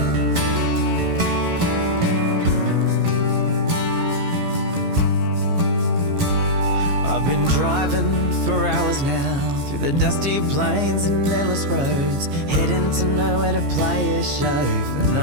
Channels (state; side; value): late; left; 15 ms